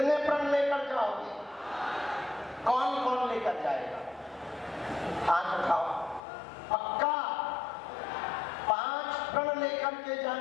प्रण लेकर जाओगे? कौन कौन लेकर जाएगा? हाथ उठाओ। पक्का 5 प्रण करके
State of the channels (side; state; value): right; drops out; at 6.2 s